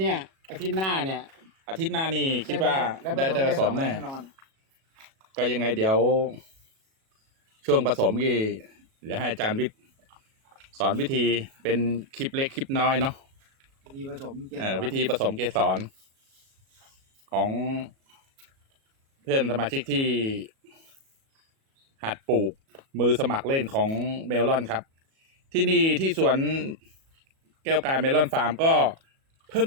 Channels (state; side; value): late; left; 37 ms